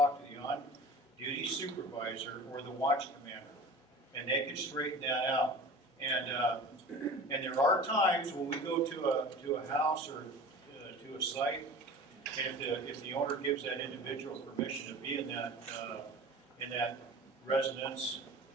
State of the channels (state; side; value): normal; both; correlation 0.39